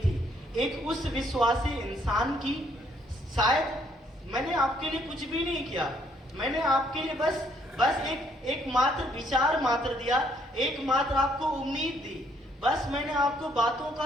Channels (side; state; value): both; normal; correlation 0.68